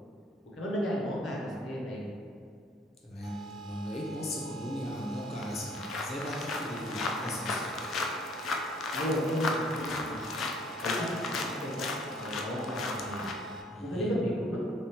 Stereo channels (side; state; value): both; normal; correlation 0.59